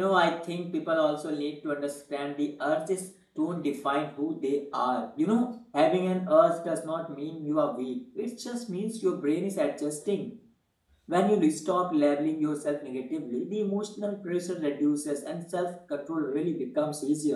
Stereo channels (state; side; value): identical; both; correlation 1.00